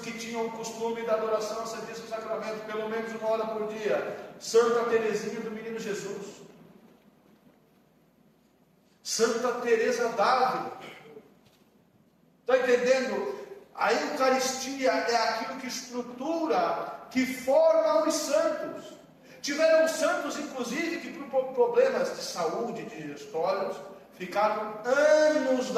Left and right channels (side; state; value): both; identical; correlation 1.00